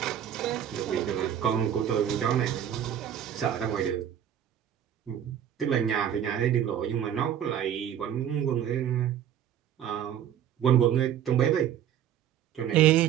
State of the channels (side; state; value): left; quieter; 10.1 dB